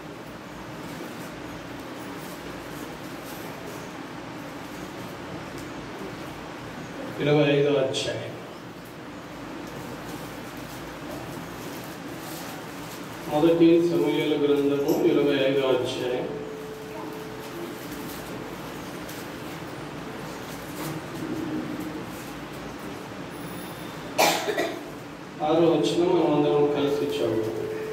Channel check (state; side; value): identical; both; correlation 1.00